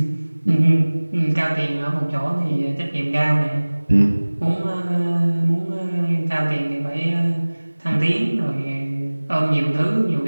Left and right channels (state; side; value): inverted; both; correlation -1.00